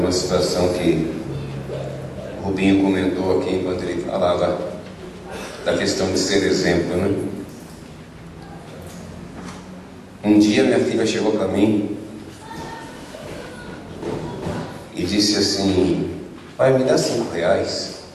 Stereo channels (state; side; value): identical; both; correlation 1.00